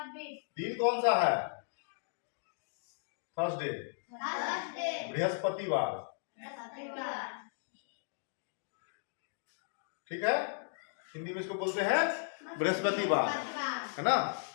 दिन कौन सा है? थर्सडे, थर्सडे, बृहस्पतिवार, ठीक है। हिंदी में इसको बोलते हैं बृहस्पतिवार, है ना।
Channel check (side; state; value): right; silent; digital silence